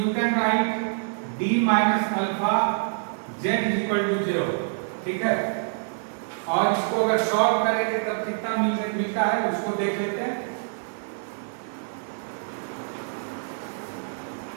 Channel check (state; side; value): silent; left; digital silence